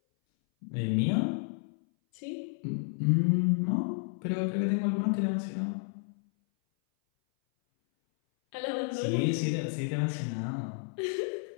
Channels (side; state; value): right; silent; 57 dB below the other